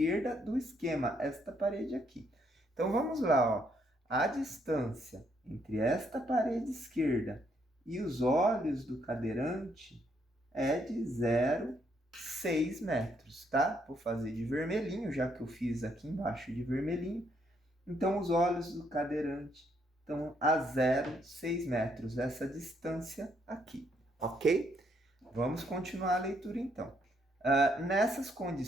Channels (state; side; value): normal; both; correlation 0.72